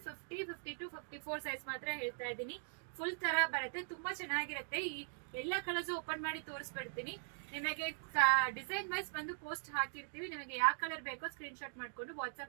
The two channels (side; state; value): left; silent; digital silence